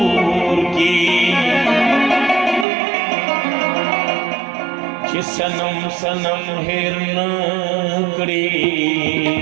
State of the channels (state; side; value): drops out; left; at 2.7 s